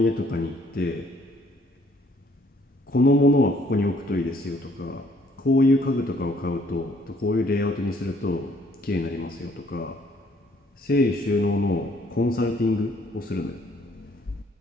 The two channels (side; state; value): both; normal; correlation 0.63